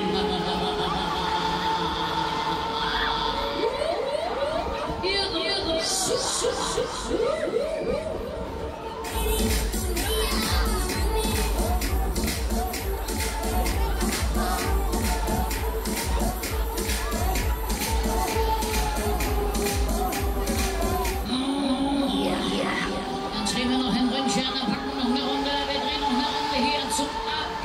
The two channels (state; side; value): identical; both; correlation 1.00